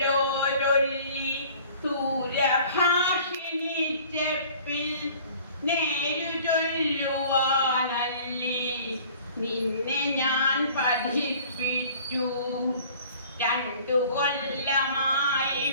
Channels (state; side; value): inverted; both; correlation -0.50